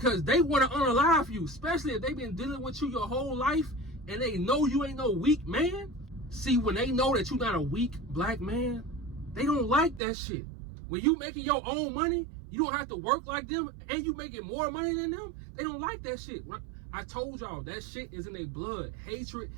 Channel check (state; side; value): drops out; left; at 10.0 s